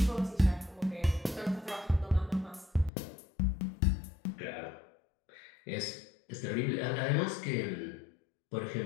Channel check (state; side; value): drops out; right; at 2.9 s